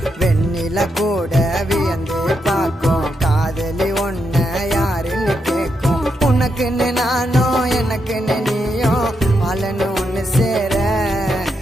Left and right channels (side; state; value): both; normal; correlation 0.82